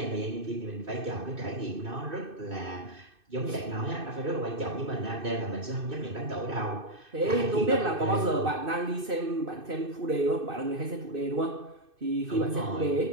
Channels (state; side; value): late; left; 2.6 ms